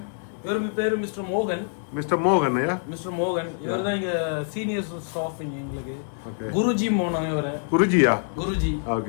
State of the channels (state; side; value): silent; right; digital silence